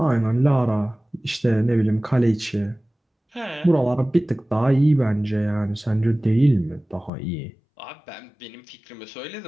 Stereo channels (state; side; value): drops out; right; at 7.1 s